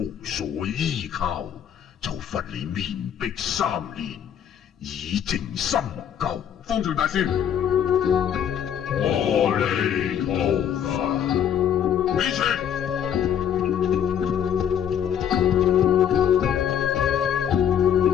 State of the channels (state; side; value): quieter; right; 9.1 dB